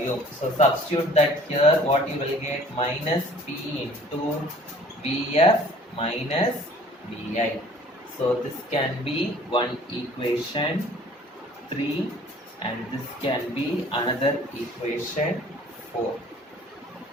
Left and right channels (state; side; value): normal; both; correlation 0.52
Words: So substitute that here, what you will get, minus P into Vf minus Vi. So this can be one equation 3 and this can be another equation 4.